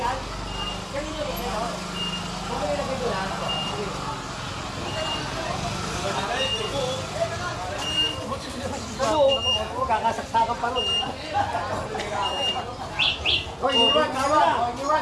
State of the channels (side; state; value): both; identical; correlation 1.00